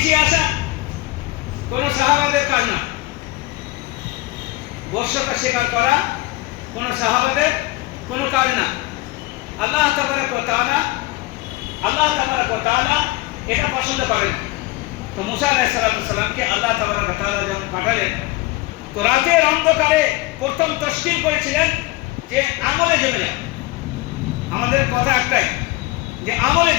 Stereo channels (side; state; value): right; quieter; 20.5 dB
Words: আসা কোন সাহাবাদের কাজ না। বশ্যতা স্বীকার করা কোন সাহাবাদের কোন কাজ না। আল্লাহ তাবারক ওয়া তাআলা এটা পছন্দ করেন। তো মুসা আলাইহিস সালামকে আল্লাহ তাবারক ওয়া তাআলা যখন পাঠালেন, তো রাতের অন্ধকারে প্রথম তশকিল করেছিলেন যে আমলে জমে যাও। আমাদের কথা একটাই যে আমলে